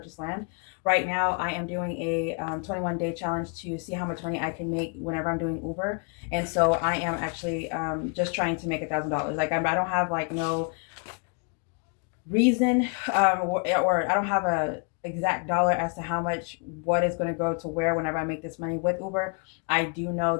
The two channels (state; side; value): quieter; right; 38.3 dB